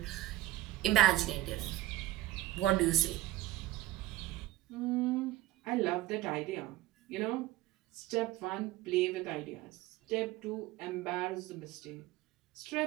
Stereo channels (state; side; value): quieter; left; 16.1 dB